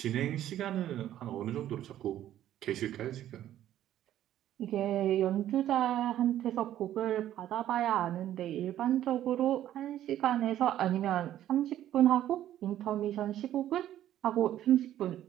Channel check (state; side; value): quieter; left; 12.2 dB